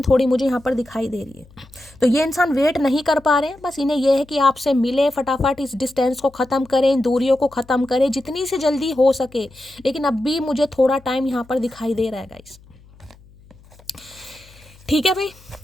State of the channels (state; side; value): noise; left; hum, 25 dB below the sound